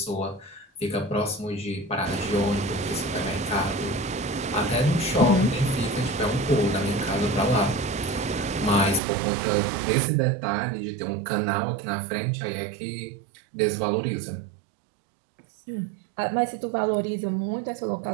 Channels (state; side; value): drops out; left; at 9.0 s